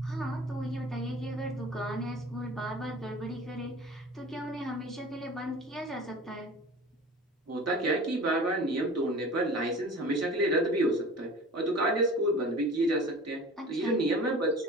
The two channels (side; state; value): both; normal; correlation 0.40